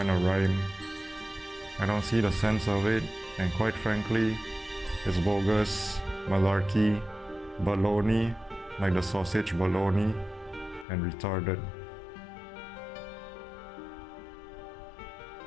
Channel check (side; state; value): right; drops out; at 10.9 s